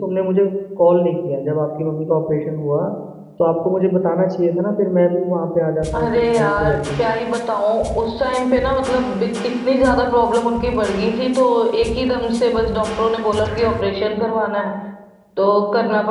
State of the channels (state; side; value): identical; both; correlation 1.00